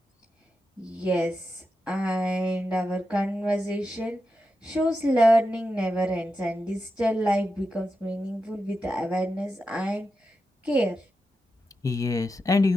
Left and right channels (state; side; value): normal; both; correlation 0.89